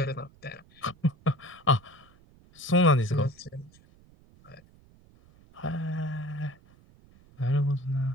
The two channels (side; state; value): right; noise; rumble, 27 dB below the sound